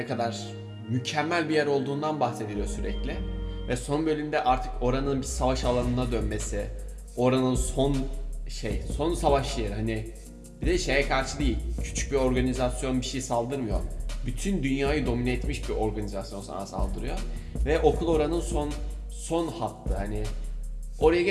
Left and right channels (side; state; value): both; identical; correlation 1.00